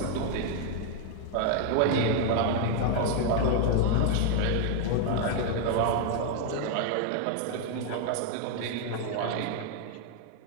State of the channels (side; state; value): both; different; correlation 0.00